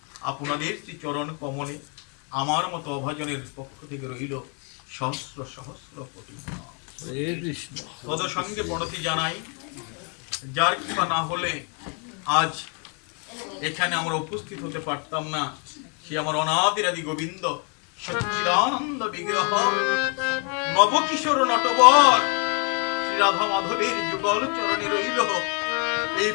আপনাদের চরণ কমলে আমার মতো অভাজনের পক্ষ থেকে রইল সহস্র সহস্র কোটি তদ সঙ্গে প্রণতি জানাই। যার কৃপা না হলে আজ এখানে আমরা উপস্থিত হতে পারতাম না। সে আমার অনাদিরাদি গোবিন্দ সচ্চিদানন্দ বিগ্রহ নবকিশোর নটবর শ্রী রাধা মাধবের যুগল চরণে রইল এই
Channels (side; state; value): right; quieter; 37.9 dB